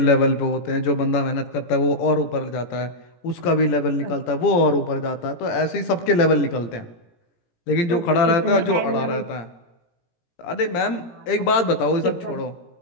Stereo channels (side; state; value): right; late; 17 ms